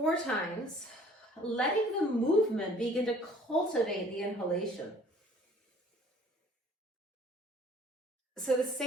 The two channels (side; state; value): both; normal; correlation 0.54